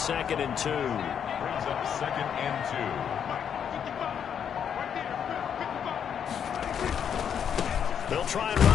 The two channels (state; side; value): quieter; right; 8.1 dB